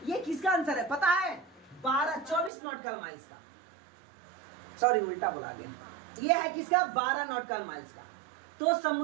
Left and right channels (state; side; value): drops out; left; at 2.5 s